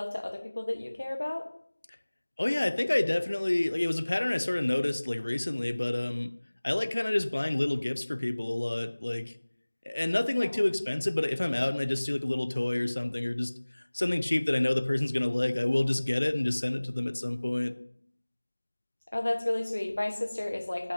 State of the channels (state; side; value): inverted; both; correlation -1.00